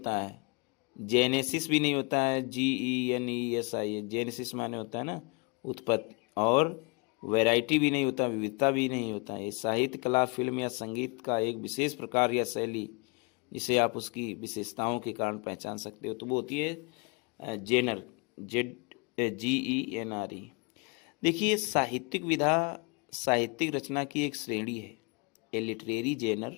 है, जेनेसिस भी नहीं होता है, GENESIS, जेनेसिस माने होता है ना उत्पत्ति, और वैरायटी भी नहीं होता, विविधता भी नहीं होता है। साहित्य कला फिल्म या संगीत का एक विशेष प्रकार या शैली जिसे आप उसकी विशेषताओं के कारण पहचान सकते हो, तो वो होती है जेनर, GENRE। देखिए, साहित्यिक विधा साहित्यिक रचना की एक श्रेणी है। A literary genre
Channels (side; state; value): right; quieter; 31.9 dB